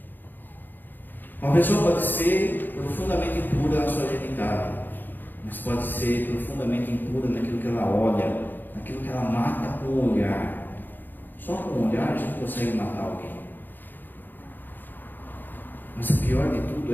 Uma pessoa pode ser profundamente impura na sua genitália, mas pode ser profundamente impura naquilo que ela olha, naquilo que ela mata com o olhar. Só com o olhar a gente consegue matar alguém. Mas o pior de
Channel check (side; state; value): right; late; 0.090 ms